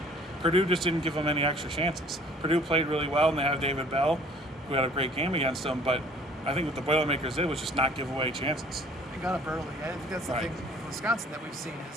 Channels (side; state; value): both; normal; correlation 0.54